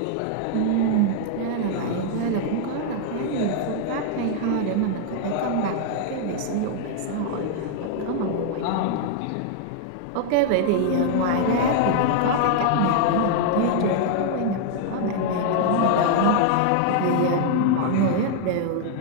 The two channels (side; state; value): both; different; correlation 0.00